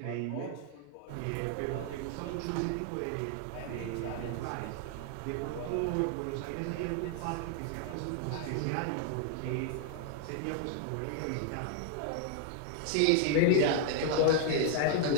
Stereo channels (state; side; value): different; both; correlation 0.01